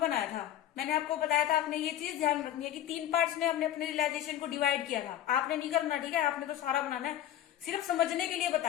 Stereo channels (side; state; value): right; quieter; 12.1 dB